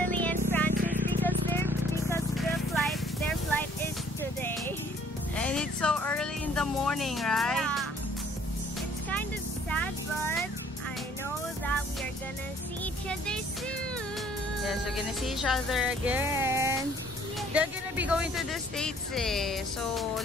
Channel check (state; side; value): normal; both; correlation 0.58